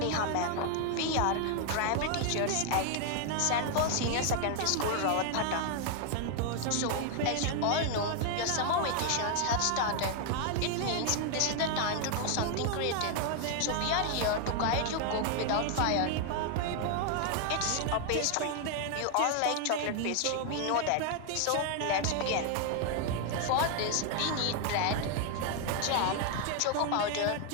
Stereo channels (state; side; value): different; both; correlation 0.00